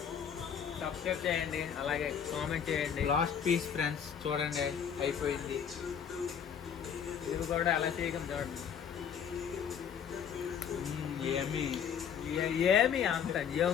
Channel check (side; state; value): right; quieter; 7.9 dB